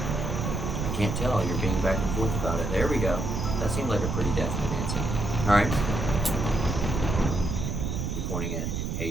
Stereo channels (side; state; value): right; noise; rumble, 2 dB below the sound